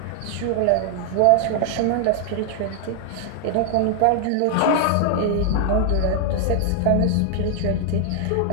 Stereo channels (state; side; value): different; both; correlation 0.00